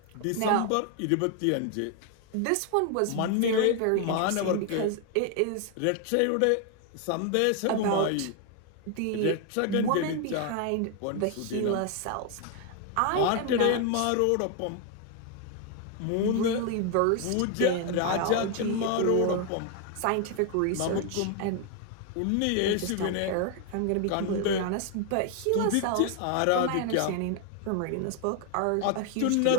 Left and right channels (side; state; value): both; different; correlation 0.00